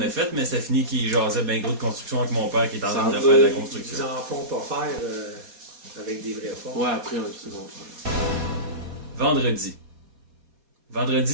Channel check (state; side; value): late; left; 4.2 ms